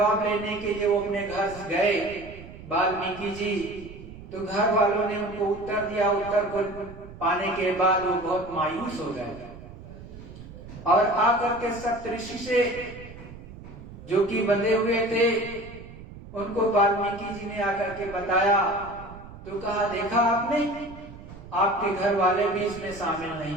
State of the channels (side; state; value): right; noise; rumble, 15 dB below the sound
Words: लेने के लिए वो अपने घर गए वाल्मीकि जी, तो घर वालों ने उनको उत्तर दिया। उत्तर को पाने के बाद वो बहुत मायूस हो गए और आकर के सप्तऋषि से जो कि बंधे हुए थे उनको वाल्मीकि जी ने आकर के बताया। तो कहा देखा आपने, आपके घर वाले भी इसमें शामिल